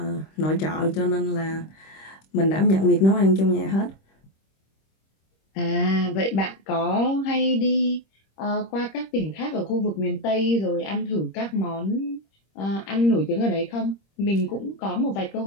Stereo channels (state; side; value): late; right; 26 ms